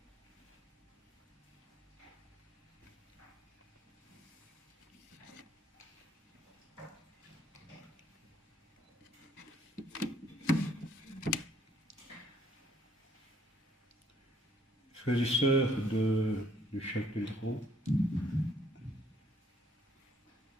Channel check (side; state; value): both; normal; correlation 0.65